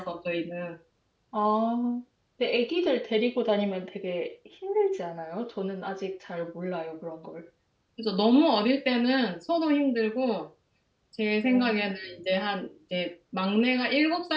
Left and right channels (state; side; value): identical; both; correlation 1.00